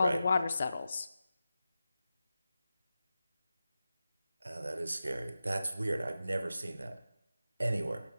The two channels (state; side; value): inverted; both; correlation -0.92